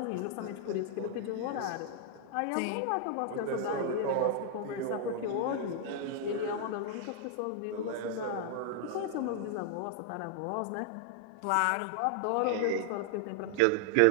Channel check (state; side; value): different; both; correlation 0.00